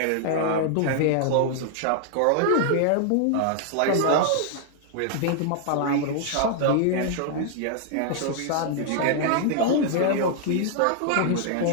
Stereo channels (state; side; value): different; both; correlation -0.01